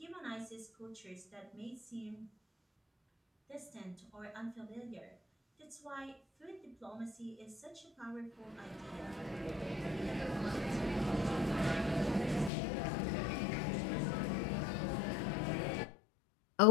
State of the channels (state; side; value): drops out; right; at 12.5 s